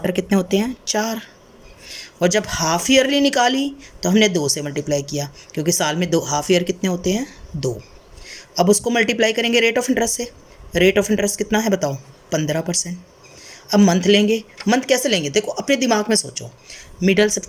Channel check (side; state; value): both; identical; correlation 1.00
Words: कितने होते हैं? 4। और जब हाफ ईयरली निकाली तो हमने 2 से मल्टीप्लाई किया, क्योंकि साल में 2 हाफ ईयर कितने होते हैं? 2। अब उसको मल्टीप्लाई करेंगे रेट ऑफ इंटरेस्ट से। रेट ऑफ इंटरेस्ट कितना है बताओ? 15%। अब मंथ लेंगे। मंथ कैसे लेंगे? देखो अपने दिमाग में सोचो। मिडल